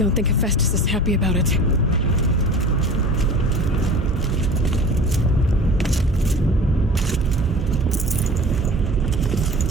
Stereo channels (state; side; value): normal; both; correlation 0.40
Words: think Hephaestus is happy about it.